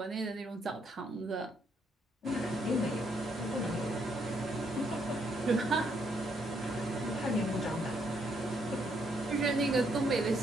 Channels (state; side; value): normal; both; correlation 0.73